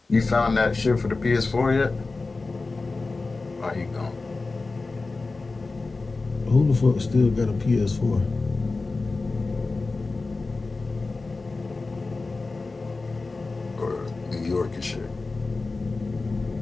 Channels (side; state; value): right; quieter; 3.7 dB